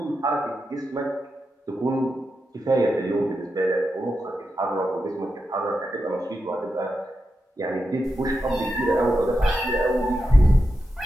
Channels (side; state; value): both; normal; correlation 0.88